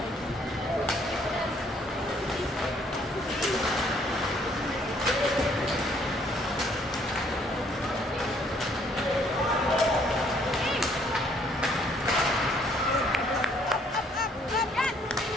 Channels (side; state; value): both; normal; correlation 0.65